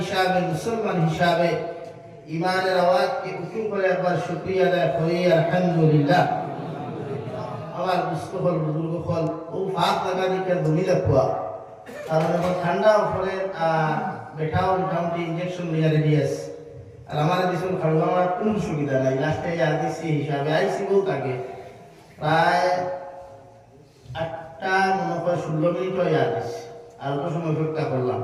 মুসলমান হিসাবে ইমানের আওয়াজকে উঁচু করে একবার শুকরিয়া আদায় করি আলহামদুলিল্লাহ। আমার মুস্তফল বুজুর্গগণ, ও ফাঁক লাগা দিকে ধনী রাখুয়া, কারণ এখন ঠান্ডা পরে বেঠাও মোটামুটি ইঞ্জেকশন লিয়া রেডি আছে। আর আমার দিশন খাওয়া আমার কোনো সুবিধা নাই, লাস্টে আর দিচ্ছি হিসাবে আইসি বহুত আগে, প্রায় 8টা মনে হয় 16 মিনিট হয়ে আসছি, আর অত সময় অপেক্ষা করলাম।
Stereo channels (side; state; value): both; identical; correlation 1.00